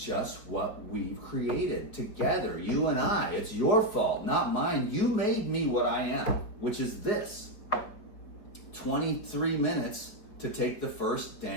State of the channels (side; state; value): right; late; 4.8 ms